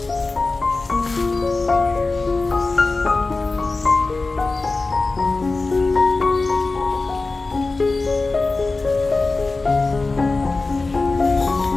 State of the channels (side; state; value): right; quieter; 3.6 dB